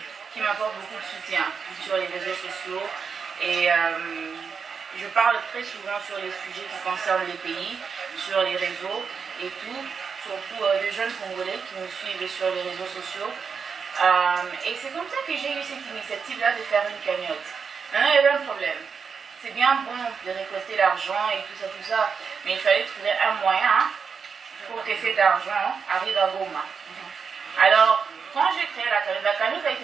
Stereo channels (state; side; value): quieter; left; 5.9 dB